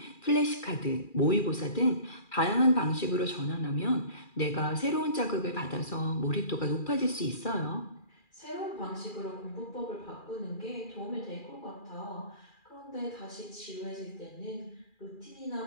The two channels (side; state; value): right; late; 2.4 ms